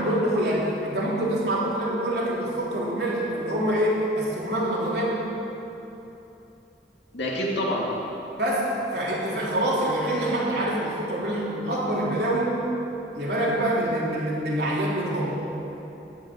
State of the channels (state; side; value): normal; both; correlation 0.34